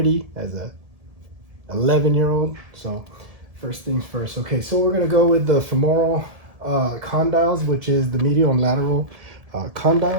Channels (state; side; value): late; left; 1.7 ms